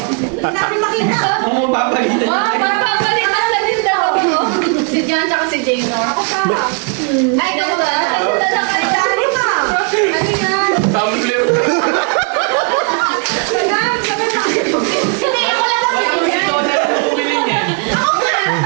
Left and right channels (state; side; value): quieter; left; 38.5 dB